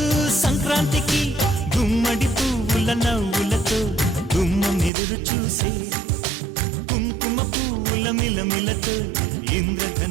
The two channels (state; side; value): drops out; left; at 4.9 s